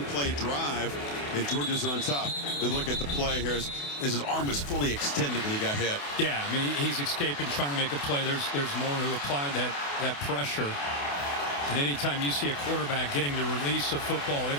drive, and Georgia's on top. And look at the play here as his arm was fully extended when he got hit. Yeah, I mean, he's escaping, trying to make a play. There's more who applied that pressure. And anytime you see a quarterback getting the release of football, that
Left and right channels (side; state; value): right; late; 28 ms